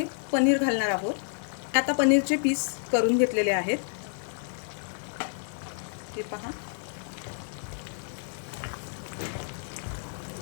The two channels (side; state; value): right; silent; 58 dB below the other